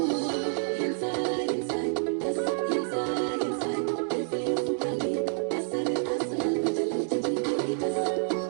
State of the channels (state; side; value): silent; left; digital silence